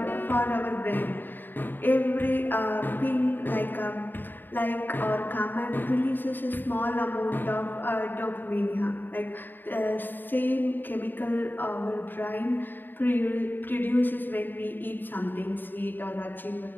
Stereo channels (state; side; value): late; right; 0.092 ms